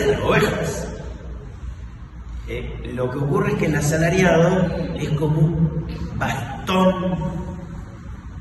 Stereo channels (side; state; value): both; identical; correlation 1.00